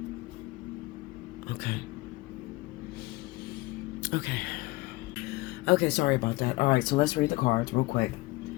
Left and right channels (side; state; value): right; quieter; 21.6 dB